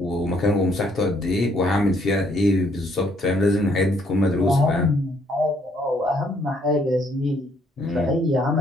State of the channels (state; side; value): normal; both; correlation 0.68